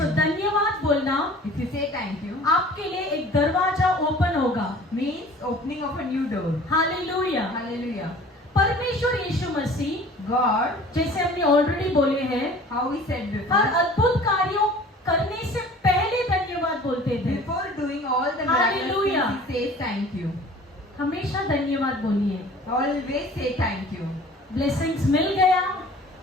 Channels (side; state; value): both; normal; correlation 0.47